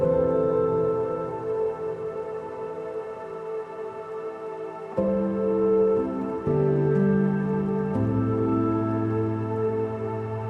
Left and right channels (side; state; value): both; identical; correlation 1.00